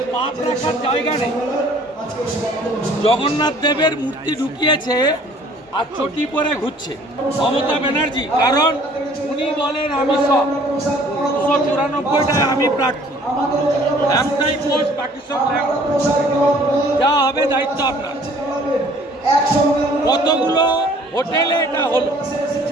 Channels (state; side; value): normal; both; correlation 0.55